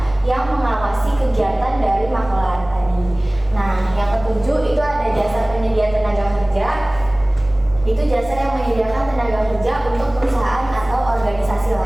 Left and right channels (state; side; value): noise; left; rumble, 17 dB below the sound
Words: yang mengawasi kegiatan dari maklar tadi. Nah, yang ketujuh itu ada jasa penyedia tenaga kerja. Itu jasa yang menyediakan tenaga kerja untuk perusahaan atau organisasi